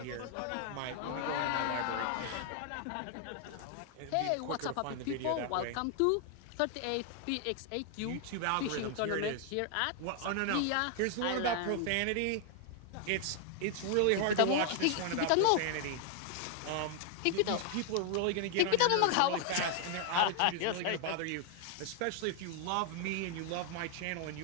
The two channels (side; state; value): both; different; correlation 0.00